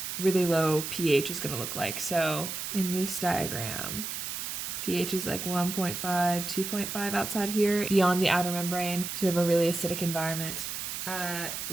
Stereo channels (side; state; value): right; noise; hiss, 5 dB below the sound